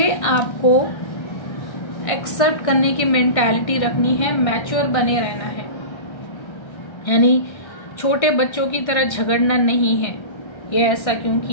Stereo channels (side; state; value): right; late; 1.3 ms